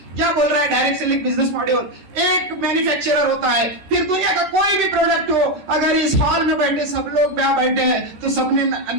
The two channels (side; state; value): left; late; 13 ms